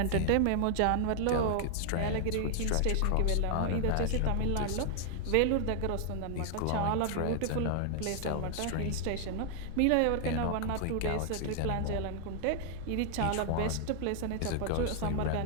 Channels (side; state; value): both; different; correlation 0.00